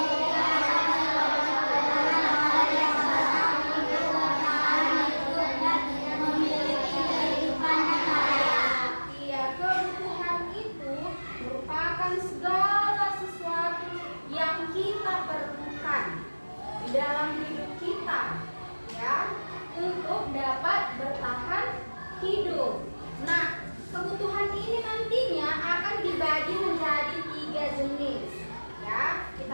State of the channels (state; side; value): inverted; both; correlation -1.00